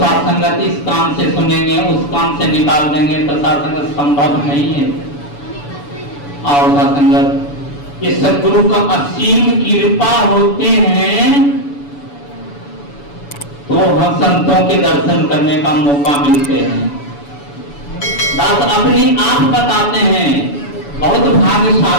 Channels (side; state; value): right; late; 7.0 ms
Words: इस काम से सुनेंगे उस काम से निकाल देंगे तो सासंगत संभव नहीं है। और सासंगत ये सद्गुरु का असीम कृपा होते हैं तो हम संतों के दर्शन करने का मौका मिलते हैं। दास अपनी आप बताते हैं बहुत